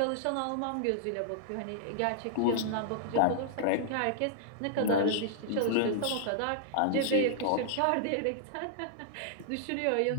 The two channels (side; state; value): both; different; correlation -0.01